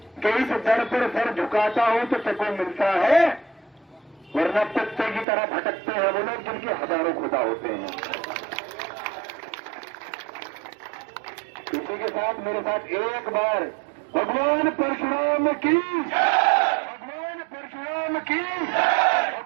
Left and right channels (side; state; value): left; drops out; at 5.2 s